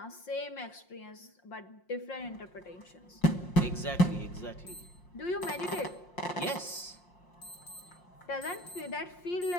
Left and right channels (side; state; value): right; late; 5.6 ms